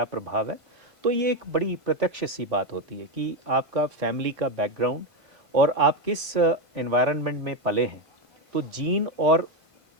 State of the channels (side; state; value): left; late; 1.5 ms